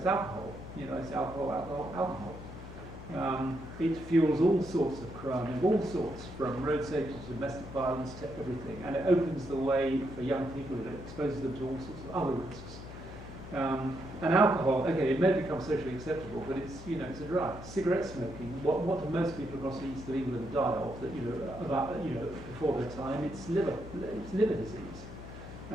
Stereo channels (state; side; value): noise; left; hum, 14 dB below the sound